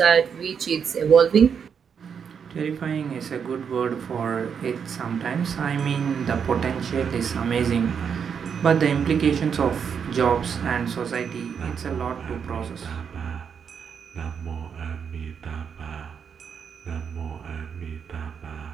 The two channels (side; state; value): left; quieter; 7.0 dB